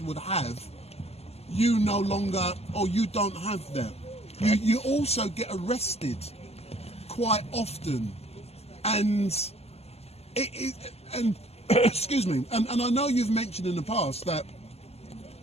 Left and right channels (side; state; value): right; late; 0.30 ms